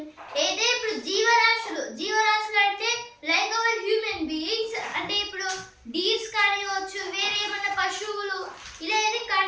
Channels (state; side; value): identical; both; correlation 1.00